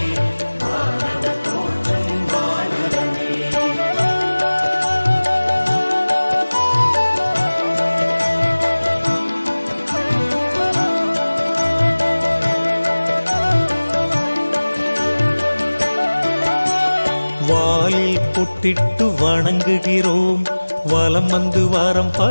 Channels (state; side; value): inverted; both; correlation -1.00